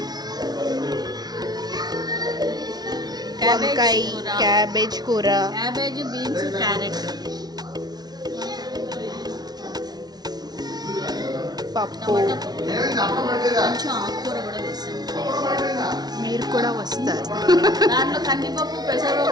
వంకాయ, క్యాబేజ్ కూర, క్యాబేజ్, బీన్స్, క్యారెట్, పప్పు. కొంచెం ఆకుకూర కూడా వేస్తాం. మీరు కూడా వస్తారు. దాంట్లో కందిపప్పు,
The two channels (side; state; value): left; late; 0.19 ms